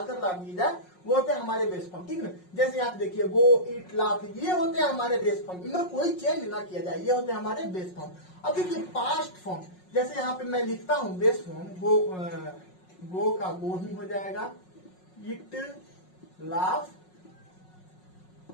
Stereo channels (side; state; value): right; late; 5.5 ms